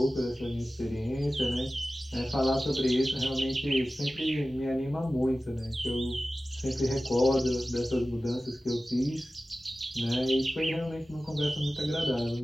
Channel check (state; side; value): normal; both; correlation 0.96